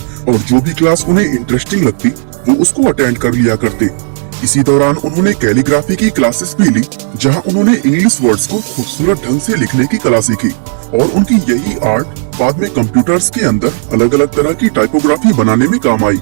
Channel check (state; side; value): silent; left; 67 dB below the other